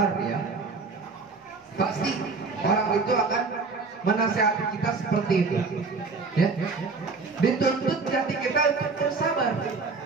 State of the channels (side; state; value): left; quieter; 4.2 dB